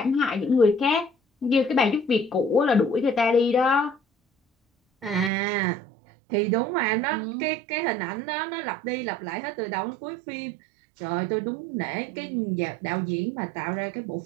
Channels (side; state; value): left; drops out; at 5.3 s